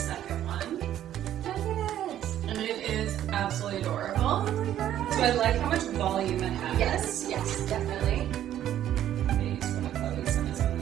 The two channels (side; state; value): left; quieter; 11.5 dB